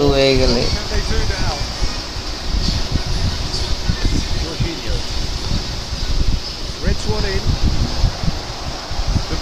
হয়ে গেলে Reds one in. De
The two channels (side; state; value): both; identical; correlation 1.00